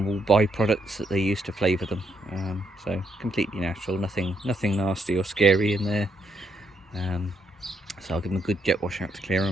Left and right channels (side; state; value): both; normal; correlation 0.76